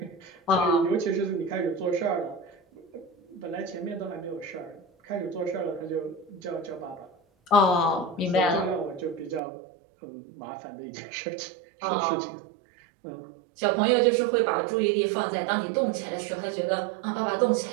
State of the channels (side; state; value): left; drops out; at 9.4 s